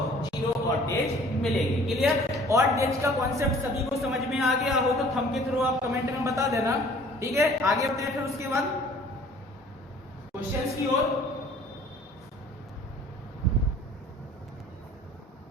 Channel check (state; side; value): normal; both; correlation 0.52